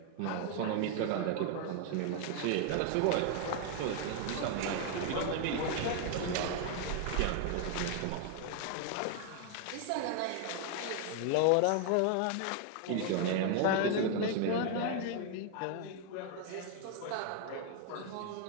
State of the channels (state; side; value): different; both; correlation 0.00